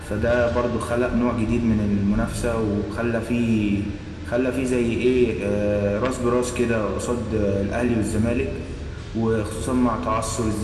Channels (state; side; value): identical; both; correlation 1.00